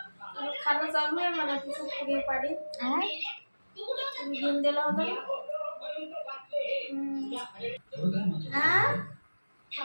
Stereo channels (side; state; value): both; inverted; correlation -1.00